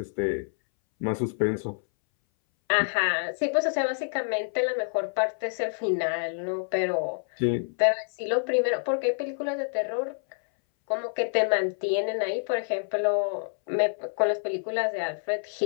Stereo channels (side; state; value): right; silent; 60 dB below the other